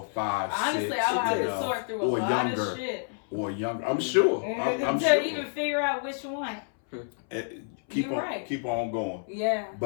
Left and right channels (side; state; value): right; silent; 59 dB below the other